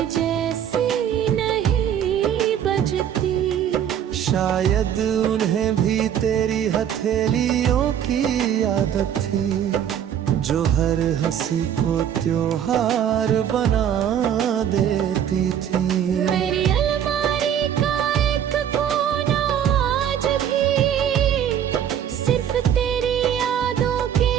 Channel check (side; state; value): left; quieter; 9.4 dB